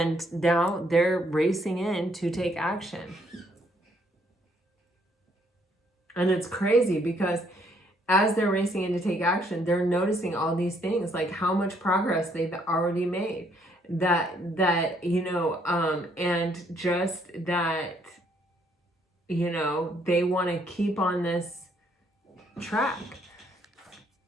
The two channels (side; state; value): both; normal; correlation 0.68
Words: now they're racing in to take action. And it's crazy because as they're racing in to take action, they're noticing all these things, like how much progress they've already made. That you know, and just that, you know, they want to keep on this track.